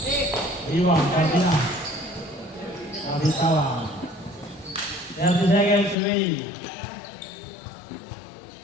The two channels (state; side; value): drops out; right; at 6.0 s